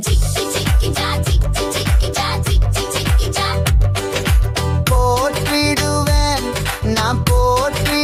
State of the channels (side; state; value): both; identical; correlation 1.00